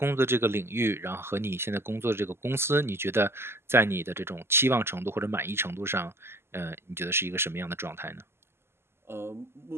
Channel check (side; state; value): left; late; 0.12 ms